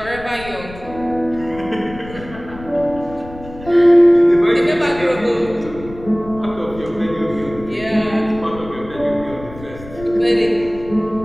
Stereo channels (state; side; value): noise; left; rumble, 16 dB below the sound